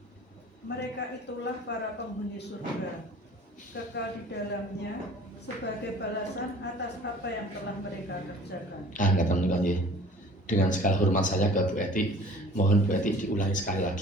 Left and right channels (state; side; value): normal; both; correlation 0.48